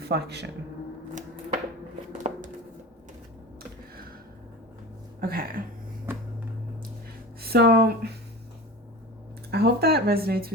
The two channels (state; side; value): normal; both; correlation 0.32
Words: Okay. So I hope that resonates